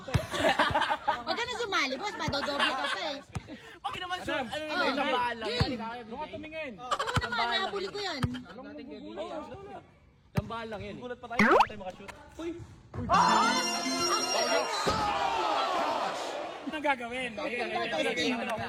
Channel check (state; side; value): identical; both; correlation 1.00